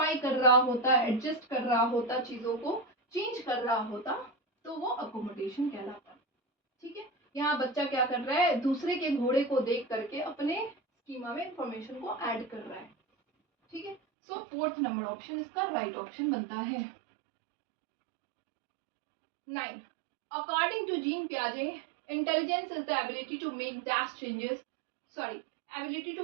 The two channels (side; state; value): left; drops out; at 14.0 s